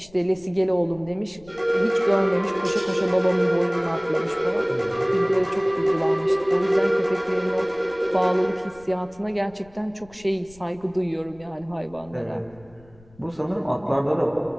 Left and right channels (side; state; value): left; noise; rumble, 26 dB below the sound